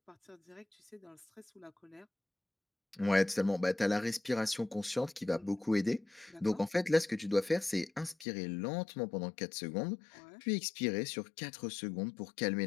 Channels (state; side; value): drops out; right; at 8.2 s